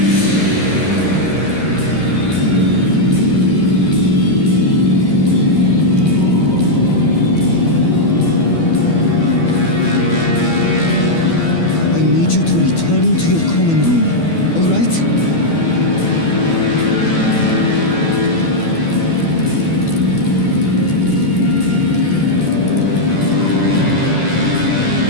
I need you to return to your common room, all right?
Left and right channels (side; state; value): right; late; 12 ms